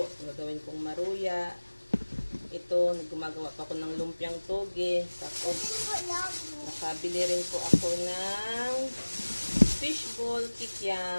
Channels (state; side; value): inverted; both; correlation -1.00